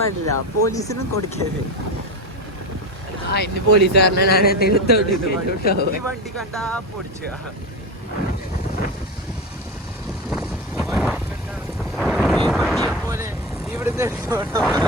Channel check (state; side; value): normal; both; correlation 0.20